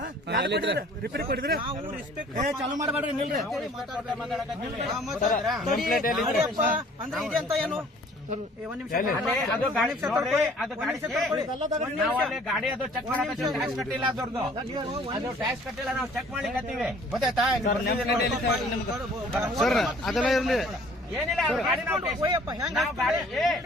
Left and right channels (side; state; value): both; normal; correlation 0.54